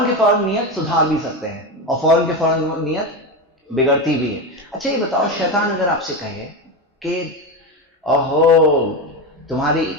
کے فوراً نیت سدھار بھی سکتے ہیں اور فوراً کے فوراً نیت بگڑتی بھی ہے. اچھا یہ بتاؤ، شیطان اگر آپ سے کہے کہ اوہو تمہاری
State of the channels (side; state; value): both; normal; correlation 0.17